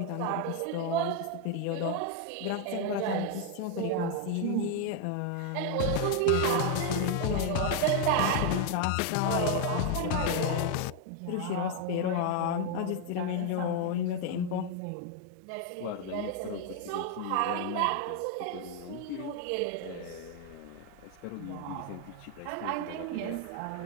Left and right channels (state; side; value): different; both; correlation 0.01